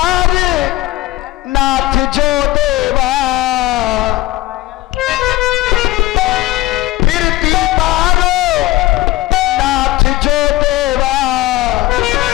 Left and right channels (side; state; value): right; quieter; 17.8 dB